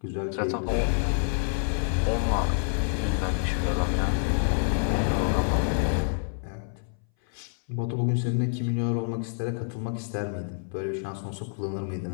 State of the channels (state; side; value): silent; right; 60 dB below the other